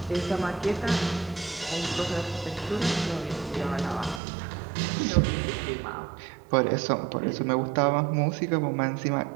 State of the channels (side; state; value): left; drops out; at 4.2 s